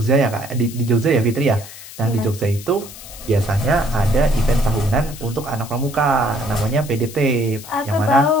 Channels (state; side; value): noise; left; hiss, 15 dB below the sound